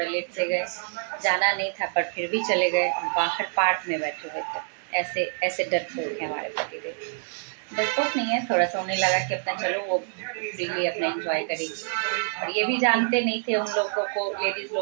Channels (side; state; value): left; silent; 61 dB below the other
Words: लेट से गए, जाना नहीं था पर फिर भी चले गए, बाहर पार्क में बैठे हुए थे। ऐसे ऐसे डरपोक हैं हमारे पतिदेव। डरपोक नहीं है, थोड़ा सा उन्हें लगा कि अपना चलो वो फ्रीली अपना एंजॉय करेगी, और ये भी जानते नहीं थे उन लोगों को, लेडीज